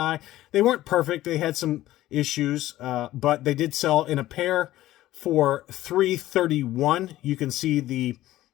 They weren't perfect; they had some issues, but they did sell in a pair for $331. You can see the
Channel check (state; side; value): quieter; right; 15.2 dB